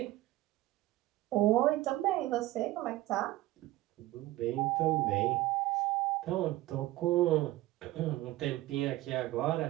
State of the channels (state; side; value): quieter; left; 16.9 dB